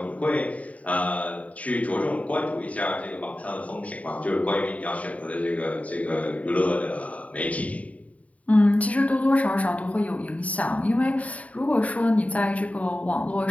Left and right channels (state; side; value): late; right; 0.068 ms